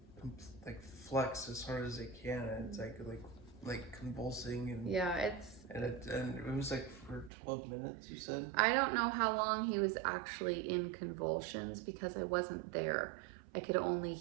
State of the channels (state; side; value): drops out; left; at 7.3 s